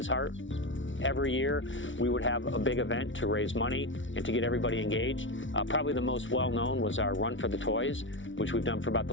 heart. Every year, we would have a big event to raise money and to get everybody engaged. Probably the most well-known was our Run for the Toys, which we've done for about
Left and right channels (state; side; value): late; right; 0.56 ms